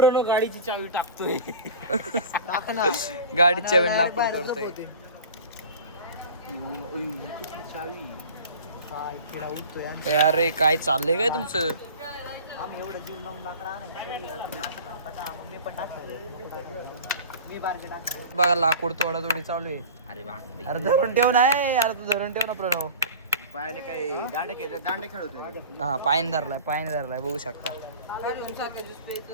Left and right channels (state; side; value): inverted; both; correlation -0.38